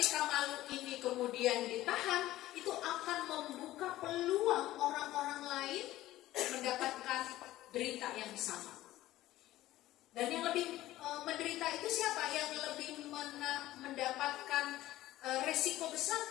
malu ini kemudian ditahan, itu akan membuka peluang orang-orang lain mendapatkan berita yang sama. Dan yang lebih menderita itu siapa? Yang lebih mendapatkan resiko besar?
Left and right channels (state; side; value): quieter; right; 15.5 dB